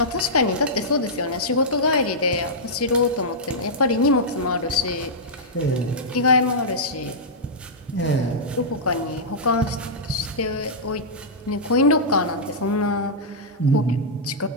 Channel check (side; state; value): both; normal; correlation -0.11